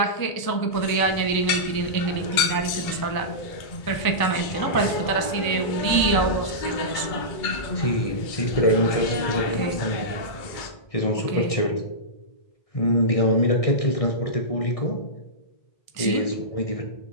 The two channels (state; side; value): late; right; 1.0 ms